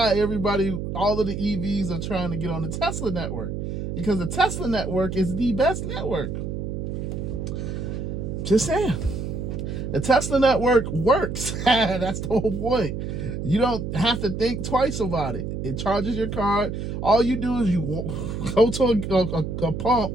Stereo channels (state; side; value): noise; right; hum, 4 dB below the sound